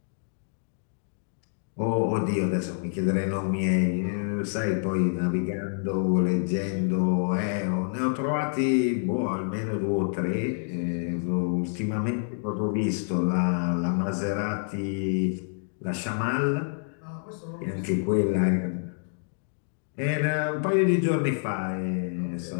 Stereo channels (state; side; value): silent; right; digital silence